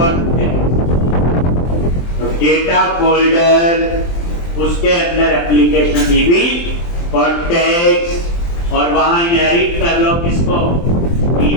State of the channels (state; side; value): late; right; 23 ms